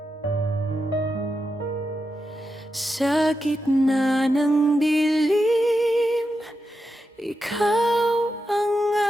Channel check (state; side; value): normal; both; correlation 0.88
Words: Sa gitna ng dilim, ikaw ang